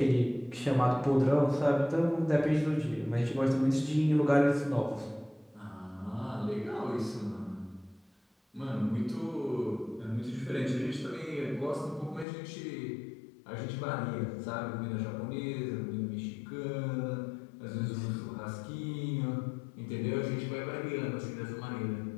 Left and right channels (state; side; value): drops out; right; at 12.2 s